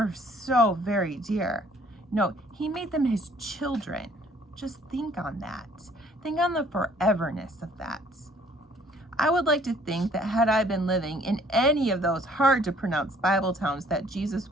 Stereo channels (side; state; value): both; normal; correlation 0.59